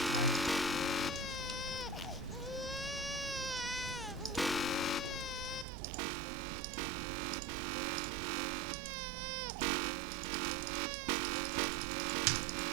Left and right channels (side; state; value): left; drops out; at 5.7 s